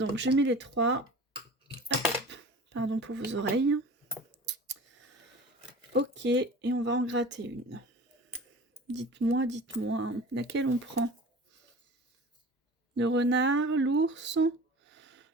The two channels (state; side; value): normal; both; correlation 0.39